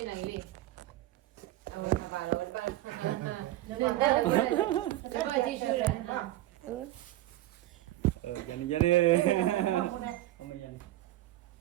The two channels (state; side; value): quieter; left; 15.5 dB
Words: này đi rồi thà bà rồi ba để bà đi chơi rồi Yan ni. Không mà yan.